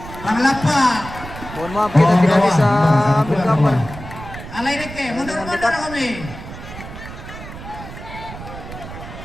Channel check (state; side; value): noise; right; rumble, 12 dB below the sound